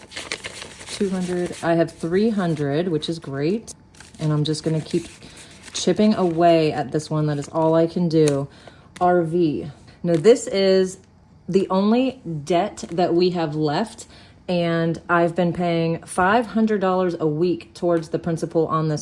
200, I have 300, which is great. And I'm just gonna keep chipping away at this one. That is all I can do. RV. Now this is the only debt that we have left, and I've been paying $500 a week towards the principal on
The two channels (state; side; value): identical; both; correlation 1.00